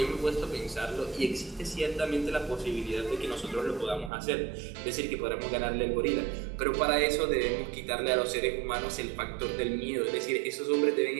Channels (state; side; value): drops out; left; at 4.1 s